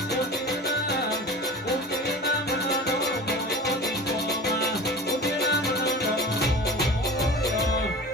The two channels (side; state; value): both; normal; correlation 0.35